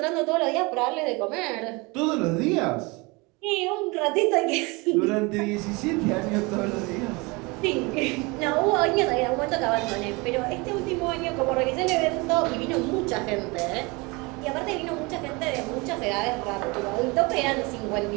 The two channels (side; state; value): left; quieter; 26.4 dB